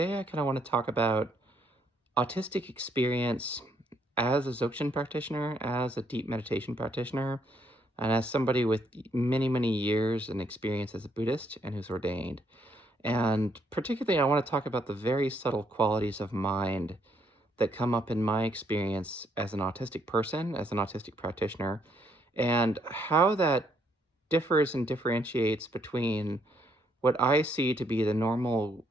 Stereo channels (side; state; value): both; normal; correlation 0.71